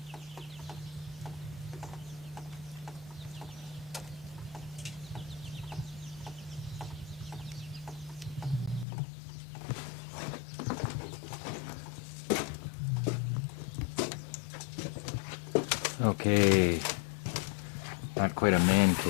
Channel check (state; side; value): drops out; right; at 8.8 s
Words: Okay, not quite a man